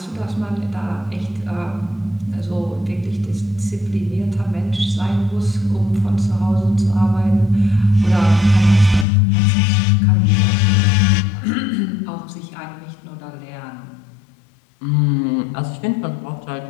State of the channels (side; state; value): right; drops out; at 9.1 s